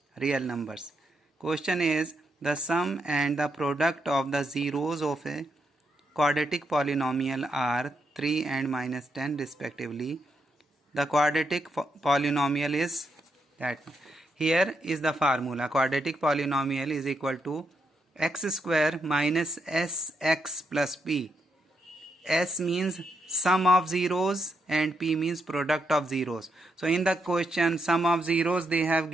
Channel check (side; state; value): both; normal; correlation 0.80